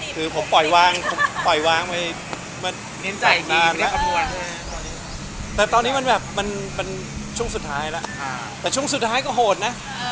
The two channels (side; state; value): both; identical; correlation 1.00